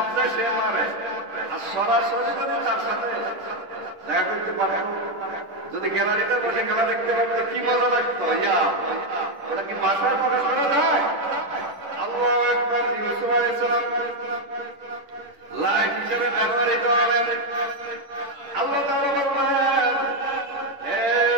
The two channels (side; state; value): left; late; 10 ms